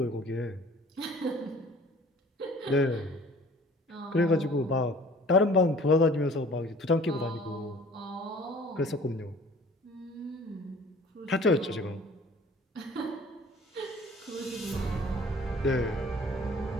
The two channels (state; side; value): normal; both; correlation 0.50